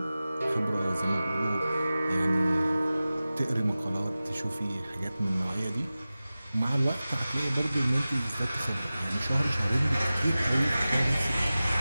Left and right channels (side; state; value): both; inverted; correlation -0.96